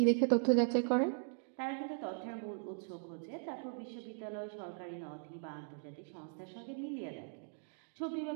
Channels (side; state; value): left; silent; digital silence